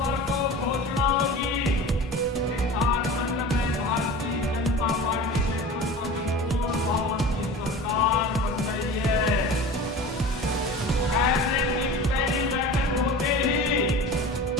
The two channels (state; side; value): normal; both; correlation 0.36